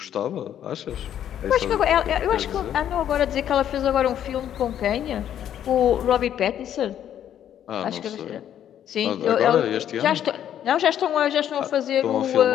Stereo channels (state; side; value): quieter; right; 10.3 dB